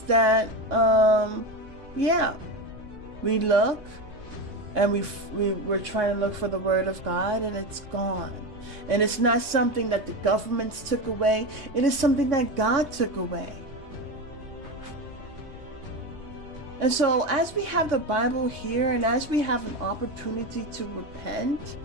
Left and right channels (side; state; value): left; late; 3.2 ms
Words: that we look and we're trying to look for the word of God, and it's gone. And it's not something that the governments took away. It is something that God took away. And so as we have the Bible here, and as we have an opportunity to repent,